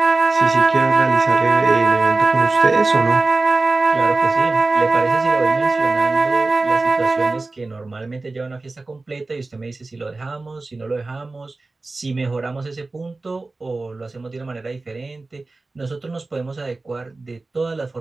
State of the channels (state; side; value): quieter; left; 3.4 dB